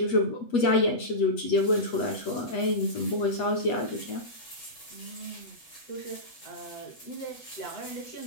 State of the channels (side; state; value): right; late; 8.3 ms